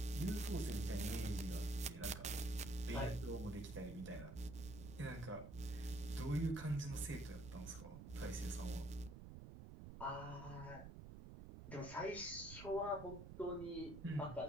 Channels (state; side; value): noise; right; rumble, 10 dB below the sound